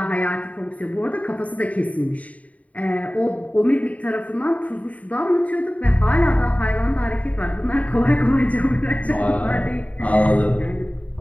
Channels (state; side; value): late; right; 0.069 ms